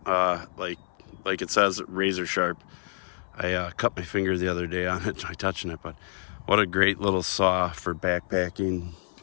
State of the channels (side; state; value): right; silent; 57 dB below the other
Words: like it says, razor sharp. I cut my finger the other day on it by touching it, but what a great little saw for backpacking,